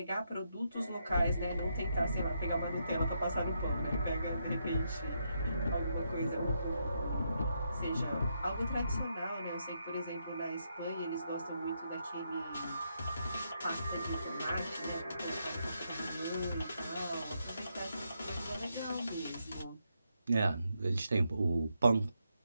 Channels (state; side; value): inverted; both; correlation -0.80